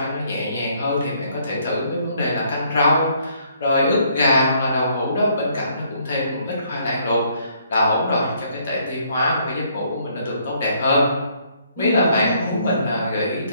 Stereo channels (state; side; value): inverted; both; correlation -0.67